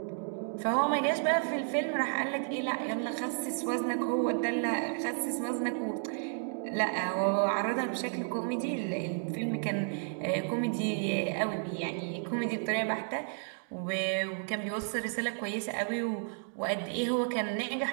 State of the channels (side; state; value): left; silent; 56 dB below the other